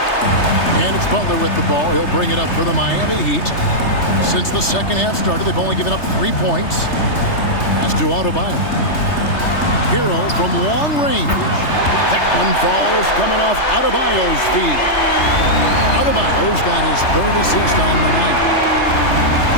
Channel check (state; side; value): late; right; 3.3 ms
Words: And it's Butler with the ball. He'll bring it up for the Miami Heat. Since the second half started, they've only given up 3 points. That's to Adebayo. Hero from long range. That one falls coming off Adebayo's feet. Adebayo's got his 3rd assist on the night.